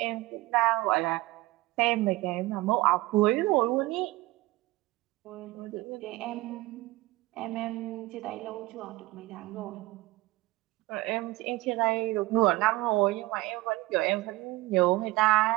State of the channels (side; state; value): left; quieter; 19.7 dB